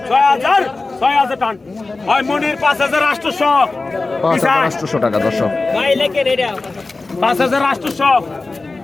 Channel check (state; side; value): quieter; right; 3.5 dB